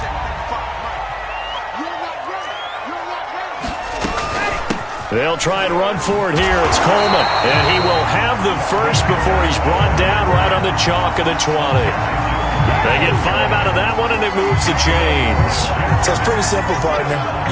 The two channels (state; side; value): identical; both; correlation 1.00